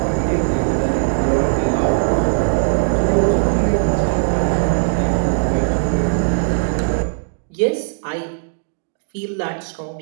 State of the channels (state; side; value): silent; left; digital silence